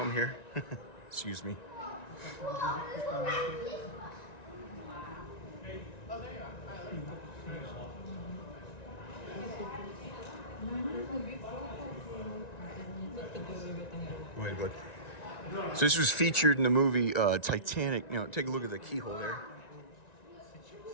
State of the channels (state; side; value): late; right; 1.9 ms